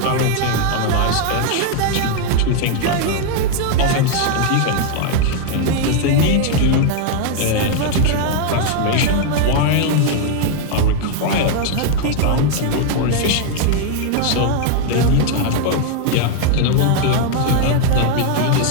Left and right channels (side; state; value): both; different; correlation 0.00